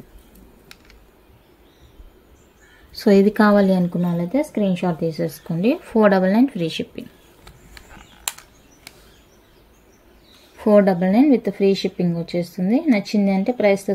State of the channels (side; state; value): both; identical; correlation 1.00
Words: సో ఇది కావాలి అనుకున్న వాళ్ళైతే స్క్రీన్ షాట్ తీసేసుకోండి. 499 free shipping. 499 with free shipping వచ్చేస్తుంది. నచ్చింది అంటే ప్రైస్తో